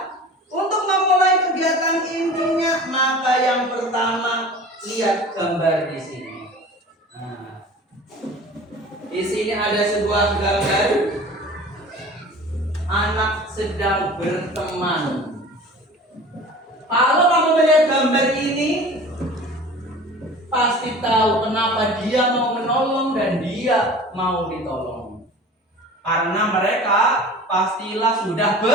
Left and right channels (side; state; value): both; normal; correlation 0.40